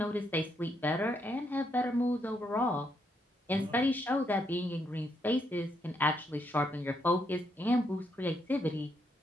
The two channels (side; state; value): both; normal; correlation 0.77